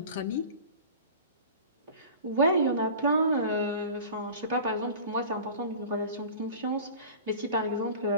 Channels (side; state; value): both; inverted; correlation -0.38